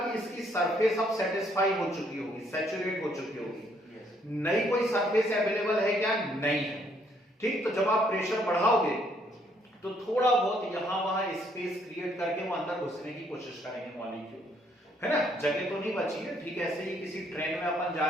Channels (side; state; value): both; normal; correlation 0.68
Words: इसकी सरफेस अब सेटिस्फाई हो चुकी होगी, सैचुरेट हो चुकी होगी, नई कोई सरफेस अवेलेबल है क्या, नहीं है। ठीक, तो जब आप प्रेशर बढ़ाओगे तो थोड़ा बहुत यहां वहां स्पेस क्रिएट करके वो अंदर घुसने की कोशिश करेंगे मॉलिक्यूल, है ना, जगह तो नहीं बची है। ठीक, ऐसे ही किसी ट्रेन में अपन जा